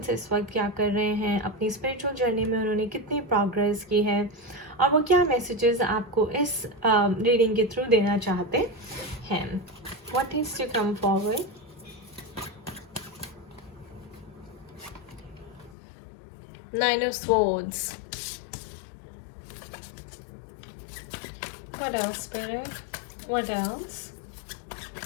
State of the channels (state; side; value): drops out; right; at 15.8 s